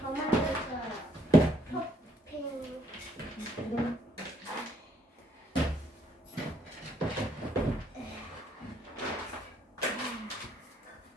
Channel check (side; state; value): both; normal; correlation 0.68